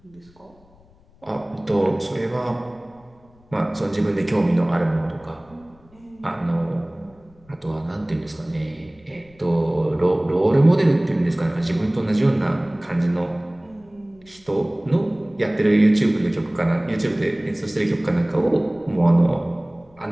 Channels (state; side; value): noise; left; rumble, 29 dB below the sound